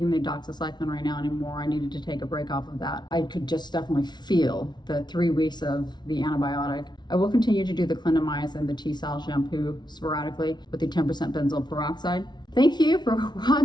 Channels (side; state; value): right; late; 0.20 ms